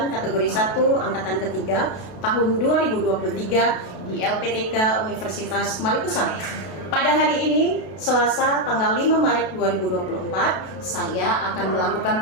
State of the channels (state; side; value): late; right; 32 ms